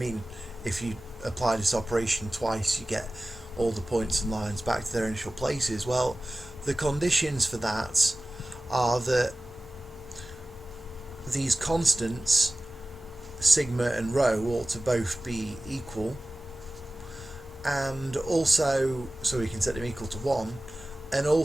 if you apply this operation twice, you get all the points and lines back to their initial places. Well, the conditions for that are that these constants sigma and rho ought to both be equal, and also, so we can set them equal to 1, and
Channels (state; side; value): normal; both; correlation 0.97